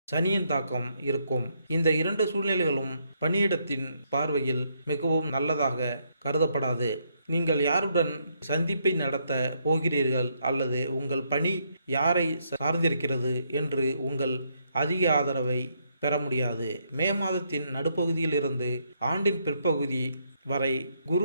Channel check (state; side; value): inverted; both; correlation -0.75